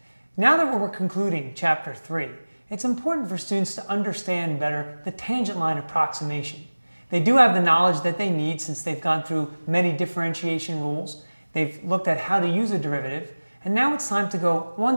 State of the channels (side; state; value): both; inverted; correlation -1.00